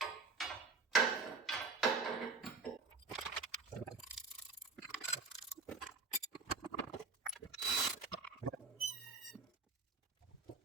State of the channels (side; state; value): left; quieter; 4.3 dB